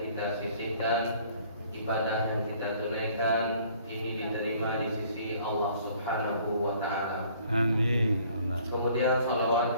sisihkan, ibadah yang kita tunaikan ini diterima di sisi Allah Subhanahu wa taala. Amin. Kemudian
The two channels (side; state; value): both; inverted; correlation -0.57